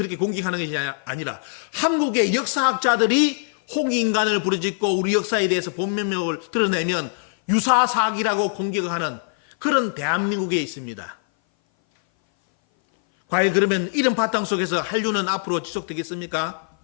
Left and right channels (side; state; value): right; silent; 59 dB below the other